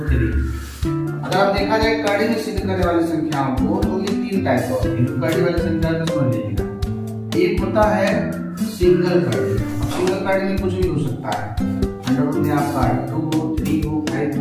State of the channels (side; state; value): both; identical; correlation 1.00